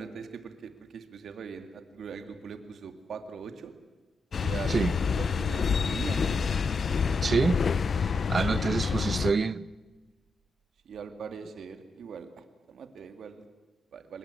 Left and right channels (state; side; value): normal; both; correlation 0.83